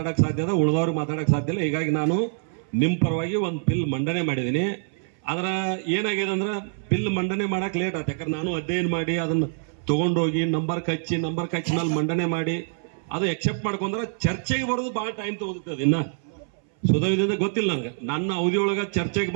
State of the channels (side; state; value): left; silent; 62 dB below the other